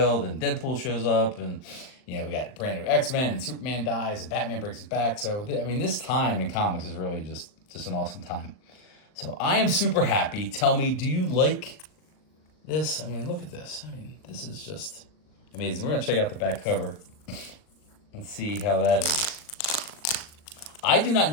and Deadpool shows up, and we got brand new X-Men, and Superman dies, and Batman breaks his back. So this time in comics is really just an awesome time. So I am super happy. Tell me, do you like this? Look at this. This is just amazing. We're gonna check out the back cover and see how that is. I do not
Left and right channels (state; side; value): late; right; 39 ms